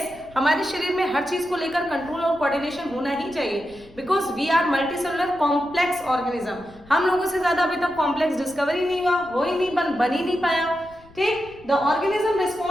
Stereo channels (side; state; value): left; noise; rumble, 24 dB below the sound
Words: हमारे शरीर में हर चीज को लेकर कंट्रोल और कोऑर्डिनेशन होना ही चाहिए, because we are multicellular complex organism. हम लोगों से ज्यादा अभी तक कॉम्प्लेक्स डिस्कवर ही नहीं हुआ, हो ही नहीं, बन ही नहीं पाया। ठीक, the organism